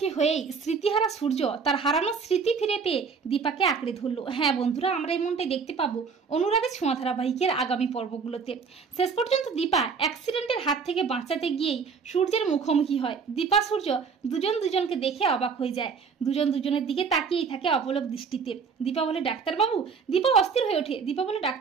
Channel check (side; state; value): left; quieter; 5.6 dB